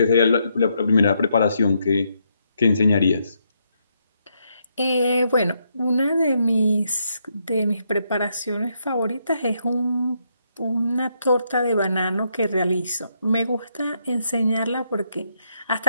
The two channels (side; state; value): both; inverted; correlation -0.77